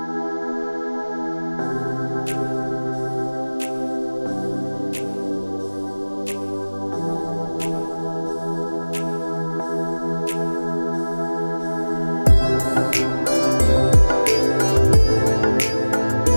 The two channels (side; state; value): both; inverted; correlation -1.00